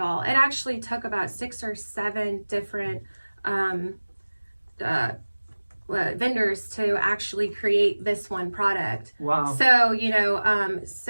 It actually took about 6 or 7 different vendors to actually create this one product. Wow. So,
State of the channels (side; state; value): both; inverted; correlation -1.00